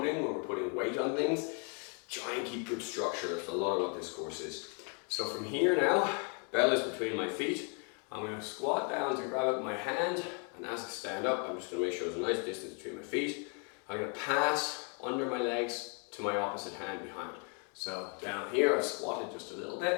when we're putting weight on things, try and keep good structure. That's a lot of what this course is. So from here now, bell is between my feet. I'm going to squat down to grab it with my hand, and as I stand up, I'm just going to make sure there's a nice distance between my feet. I'm going to pass under my legs to my opposite hand behind. So down here, I've squatted just a little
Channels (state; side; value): quieter; right; 38.0 dB